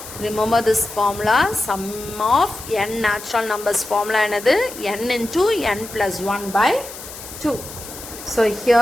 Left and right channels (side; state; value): left; noise; hiss, 13 dB below the sound